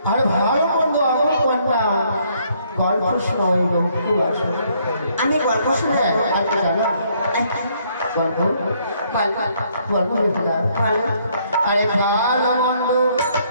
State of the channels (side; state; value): both; inverted; correlation -0.68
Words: আর ভালো মন্দ আমার কন্যা গল্প শোনা। আমি গল্প শুনে জানো গল্প বল গল্প বেহুলা বল আরে ভালো মন্দ